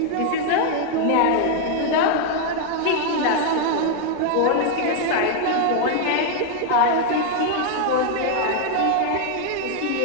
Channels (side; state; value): both; different; correlation 0.00